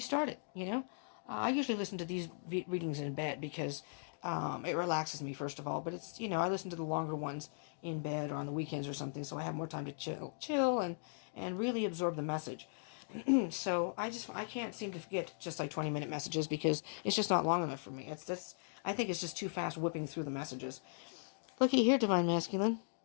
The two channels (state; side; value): silent; right; digital silence